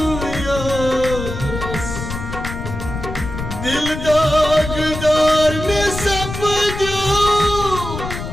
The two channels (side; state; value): left; noise; rumble, 7 dB below the sound